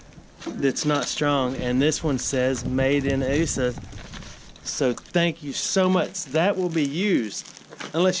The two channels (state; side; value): identical; both; correlation 1.00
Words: that's not strong, and this one says made in USA. So thank you so much. That will be used,